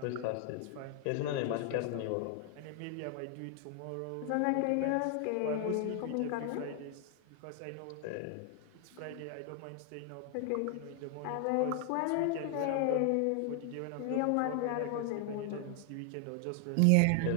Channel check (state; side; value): different; both; correlation 0.00